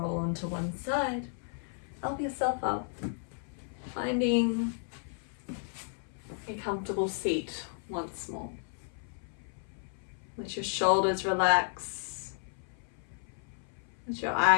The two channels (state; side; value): silent; right; 56 dB below the other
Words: onto one side, help yourself up, finding a comfortable seat once more. Let your shoulders relax. Let your